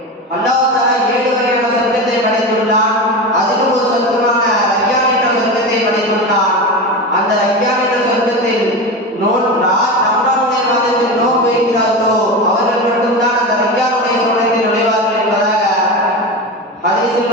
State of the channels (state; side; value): normal; both; correlation 0.23